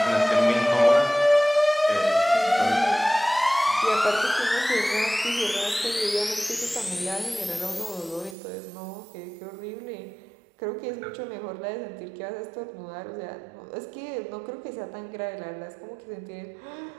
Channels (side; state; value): left; drops out; at 8.3 s